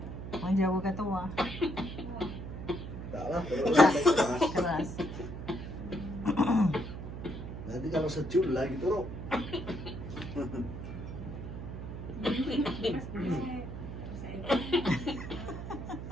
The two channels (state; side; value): noise; right; hum, 8 dB below the sound